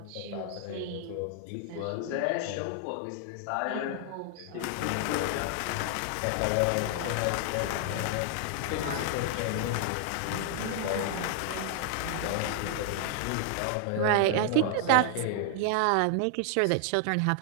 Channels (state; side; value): different; both; correlation 0.00